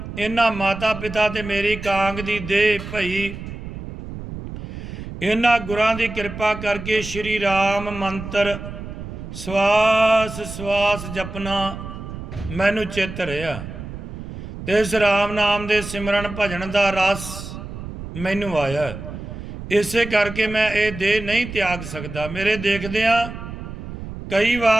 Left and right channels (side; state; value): right; noise; rumble, 10 dB below the sound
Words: ਇਹਨਾਂ ਮਾਤਾ ਪਿਤਾ ਤੇ ਮੇਰੀ ਕਾਂਗ ਦੀ ਦੇਹ ਭਈ। ਇਹਨਾਂ ਗੁਰਾਂ ਦੀ ਕਿਰਪਾ ਕਰਕੇ ਸ਼੍ਰੀ ਰਾਮ ਮੰਤਰ ਸਵਾਸ ਸਵਾਸ ਜਪਨਾ ਮੈਨੂੰ ਚਿੱਤ ਰਿਹਾ, ਤੇ ਇਸ ਰਾਮ ਨਾਮ ਦੇ ਸਿਮਰਨ ਭਜਨ ਦਾ ਰਸ ਮੈਨੂੰ ਆਇਆ। ਇਸੇ ਕਰਕੇ ਮੈਂ ਇਹ ਦੇਹ ਨਹੀਂ ਤਿਆਗ ਸਕਦਾ। ਮੇਰੇ ਦੇਖਦਿਆਂ ਕਈ